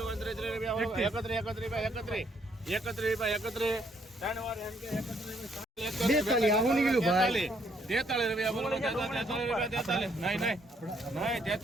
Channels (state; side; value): normal; both; correlation 0.70